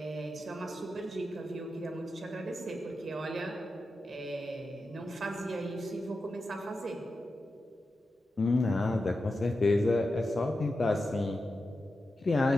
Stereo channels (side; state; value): both; normal; correlation 0.90